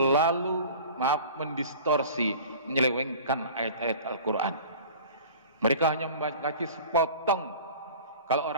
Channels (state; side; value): inverted; both; correlation -0.41